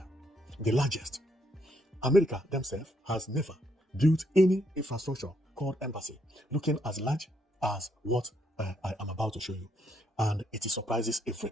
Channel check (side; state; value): both; normal; correlation 0.74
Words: The largest. America themselves has never built any infrastructure called embassy looking as large as what I am about to show you. And it surprises